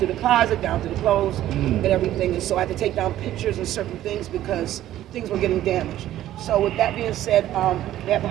the closet, down to the clothes, and everything. And so I had to take down pictures and certain things because things were getting damaged. So with that being said, they have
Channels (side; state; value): left; quieter; 13.2 dB